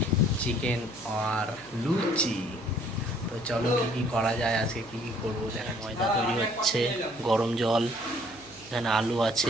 চিকেন আর লুচি। তো চলো কী কী করা যায়, আজকে কী কী করবো দেখা। ময়দা তৈরি হচ্ছে, গরম জল, এখানে আলু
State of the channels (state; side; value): noise; right; hum, 23 dB below the sound